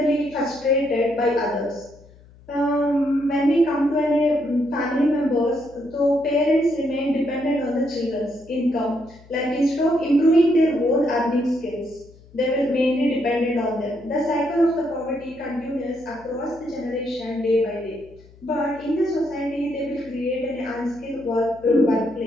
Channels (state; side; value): noise; left; hum, 24 dB below the sound